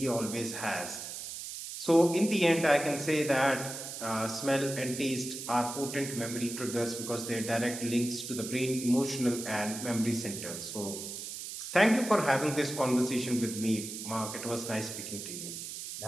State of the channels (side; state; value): right; noise; hiss, 8 dB below the sound